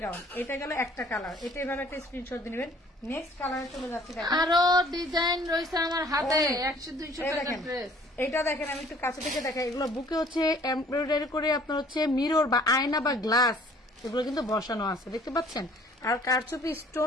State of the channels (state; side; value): normal; both; correlation 0.55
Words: গাউন, এটা গেল একটা কালার, এটা এভাবে একটা স্ক্রিনশট দিয়ে নেবেন। নেক্সট কালারে চলে যাচ্ছে, আরো ডিজাইন রয়েছে আমার হাতে, 100-200 টাকা ড্রেস। এইটা দেখেন, আমি একটু কাছে থেকে দেখাই। এগুলো বুকে হচ্ছে এমব্রয়ডারি করে আপনার হচ্ছে মিরর বা আয়না বা গ্লাস, এগুলো কিন্তু বসানো আছে, দেখতে পাচ্ছেন। আর কারচুপি